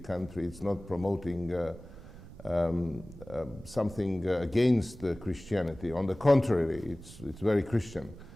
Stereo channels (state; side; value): noise; right; rumble, 17 dB below the sound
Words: country. It's not promoting something against Christianity. On the contrary, it's very Christian.